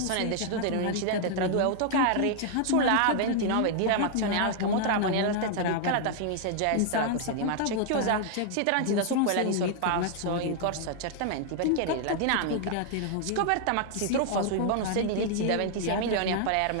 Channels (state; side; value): different; both; correlation 0.00